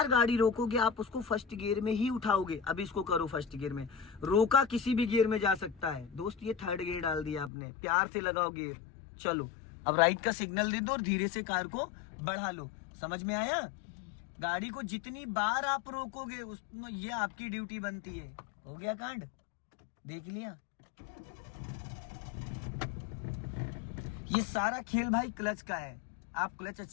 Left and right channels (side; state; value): right; drops out; at 7.5 s